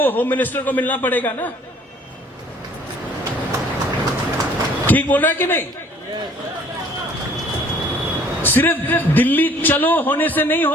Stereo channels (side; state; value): both; normal; correlation 0.56